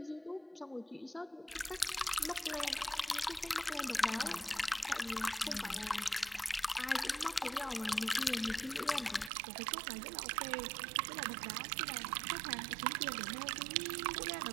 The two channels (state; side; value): drops out; left; at 9.3 s